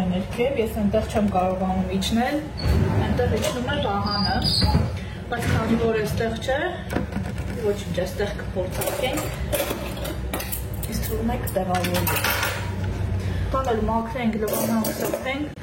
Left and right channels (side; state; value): both; identical; correlation 1.00